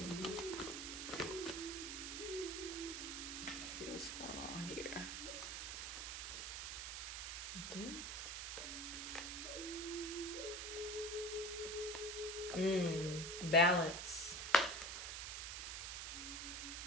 Let's see what's going on here. Balance.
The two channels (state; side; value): noise; right; hiss, 4 dB below the sound